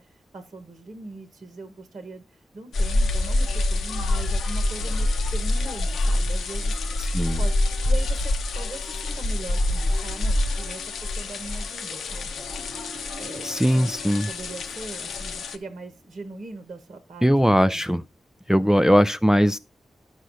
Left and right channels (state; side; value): normal; both; correlation 0.94